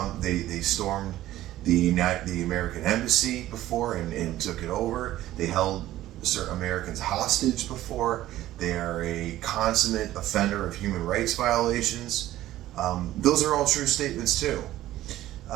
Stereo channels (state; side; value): quieter; left; 14.5 dB